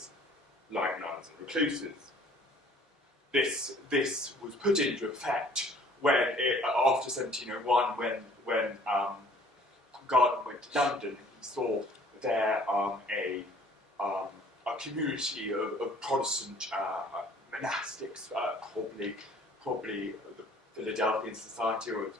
like nuns and recluses. This was put into effect after 1701, when Garden went to London. He saw there a community of Protestant monastics, probably the Philadelphian Society or its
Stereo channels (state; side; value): normal; both; correlation 0.54